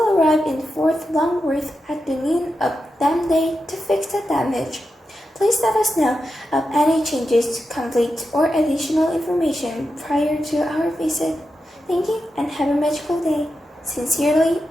arrive in Fort Longworth at the noon of that day to fix the damage. Please let us know of any changes, conflicts, or additional information prior to our visit. Thank you and have a magical day. Sincerely,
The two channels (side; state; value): both; normal; correlation 0.89